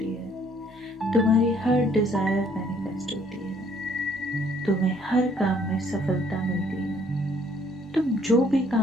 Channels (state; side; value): normal; both; correlation 0.63